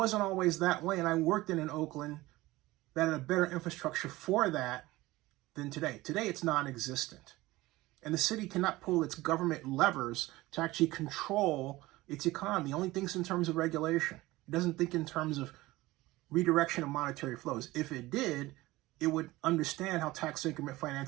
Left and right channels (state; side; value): quieter; left; 18.9 dB